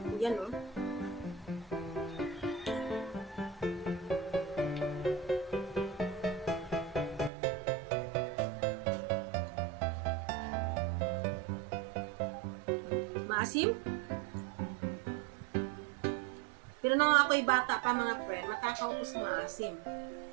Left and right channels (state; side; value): drops out; left; at 7.3 s